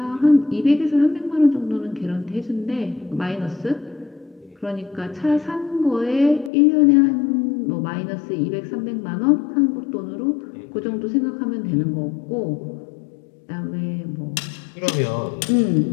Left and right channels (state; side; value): drops out; right; at 6.5 s